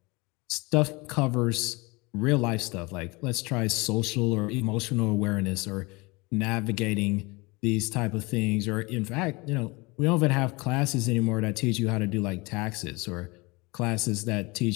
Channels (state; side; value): quieter; right; 25.4 dB